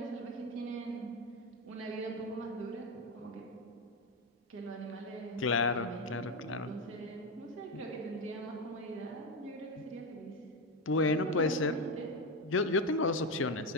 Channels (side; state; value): both; normal; correlation 0.12